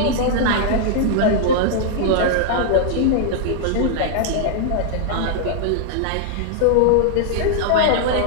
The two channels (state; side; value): different; both; correlation -0.01